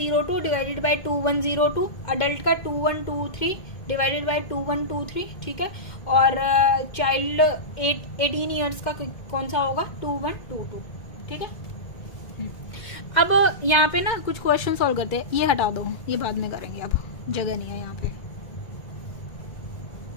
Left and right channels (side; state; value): right; late; 2.1 ms